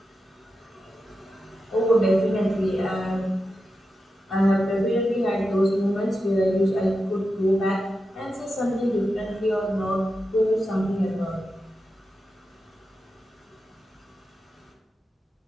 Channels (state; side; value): normal; both; correlation 0.90